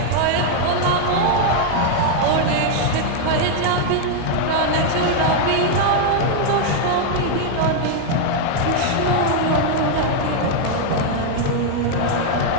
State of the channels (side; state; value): both; different; correlation 0.00